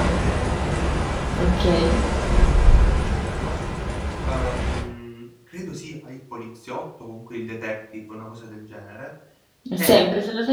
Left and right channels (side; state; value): both; identical; correlation 1.00